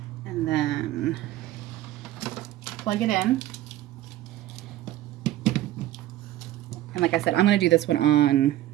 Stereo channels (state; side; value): quieter; left; 14.4 dB